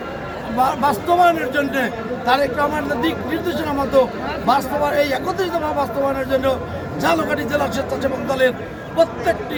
বাস্তবায়নের জন্য তারেক রহমানের দিক নির্দেশনা মতো এই 31 দফা বাস্তবায়নের জন্য ঝালকাঠি জেলা স্বেচ্ছাসেবক দলের প্রত্যেকটি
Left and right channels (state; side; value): identical; both; correlation 1.00